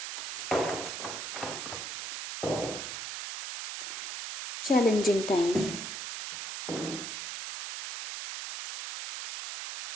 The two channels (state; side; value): noise; right; hiss, 6 dB below the sound